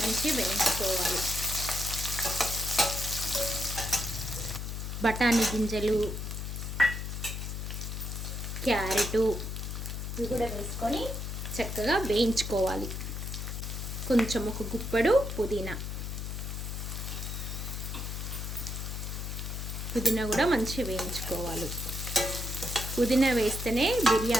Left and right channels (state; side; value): noise; left; hum, 5 dB below the sound